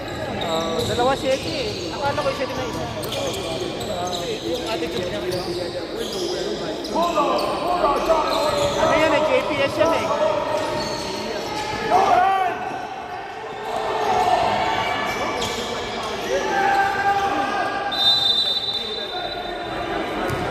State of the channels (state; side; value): identical; both; correlation 1.00